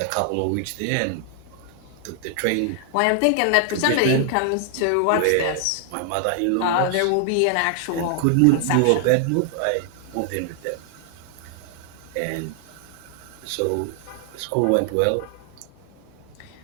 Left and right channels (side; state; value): both; different; correlation 0.00